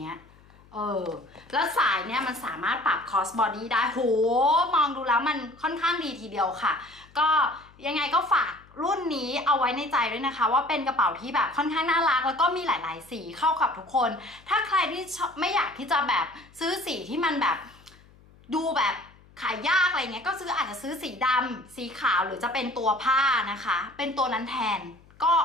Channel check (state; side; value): noise; left; hum, 26 dB below the sound